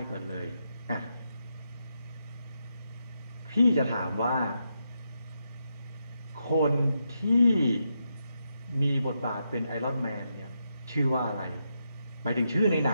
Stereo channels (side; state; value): both; inverted; correlation -0.83